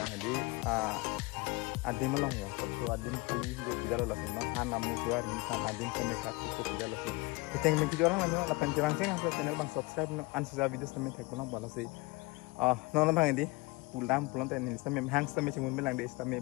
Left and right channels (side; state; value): right; quieter; 24.5 dB